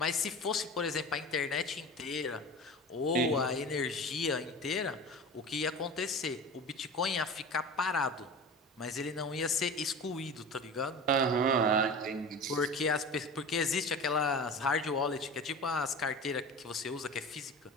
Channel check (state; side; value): normal; both; correlation 0.33